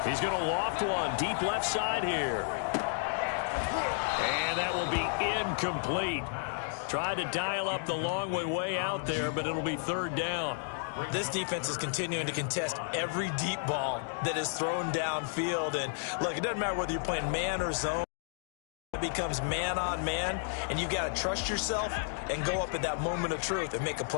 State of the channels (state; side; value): silent; right; digital silence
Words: He's going to loft one deep left side here. And that will be incomplete. Tried to dial up the long way out there, but it'll be 3rd down. This defense is continuing to contest every deep ball that is thrown downfield. And, look, it doesn't matter whether you're playing man or zone. It becomes man on man, and you've got to trust yourself and go up at that moment of truth and make a